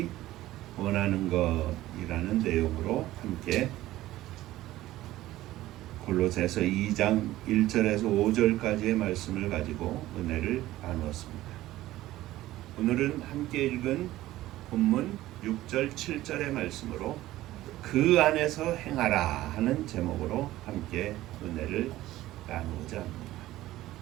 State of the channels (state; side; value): quieter; left; 15.7 dB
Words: 원하는 것이라는 내용으로 함께 골로새서 2장 1절에서 5절까지의 말씀을 가지고 은혜를 나누었습니다. 오늘은 함께 읽은 본문 6절 7절의 말씀으로 그 안에서 행하라 하는 제목으로 함께 은혜를 나누고자 합니다.